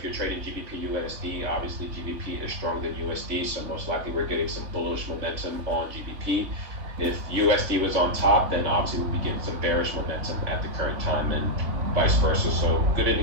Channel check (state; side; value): late; left; 3.5 ms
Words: you're trading GBP USD, obviously GBP is stronger than USD, so most likely we're getting some bullish momentum on GBP. If USD was on top, then obviously we'll be getting some bearish momentum at the current time, and vice versa. So good